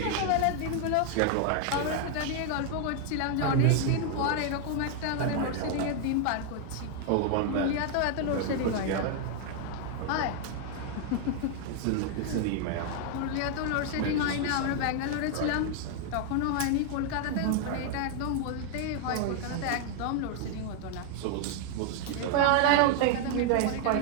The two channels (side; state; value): both; different; correlation 0.00